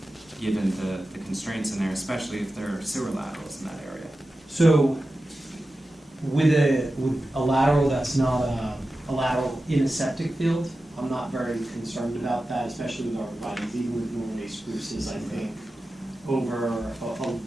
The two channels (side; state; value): both; normal; correlation 0.93